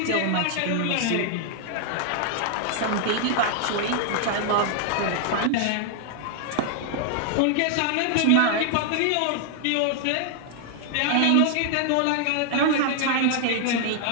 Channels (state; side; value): different; both; correlation 0.00